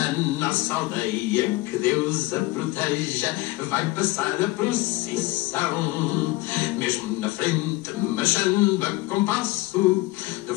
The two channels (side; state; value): right; quieter; 20.5 dB